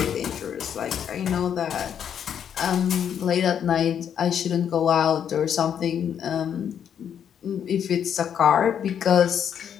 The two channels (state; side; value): quieter; right; 8.6 dB